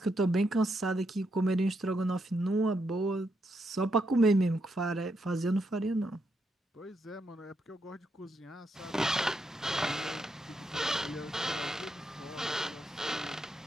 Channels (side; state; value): both; normal; correlation 0.80